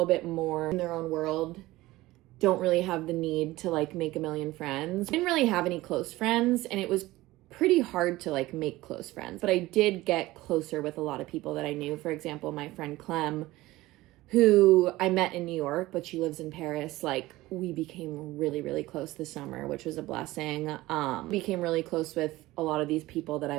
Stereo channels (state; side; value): quieter; left; 18.2 dB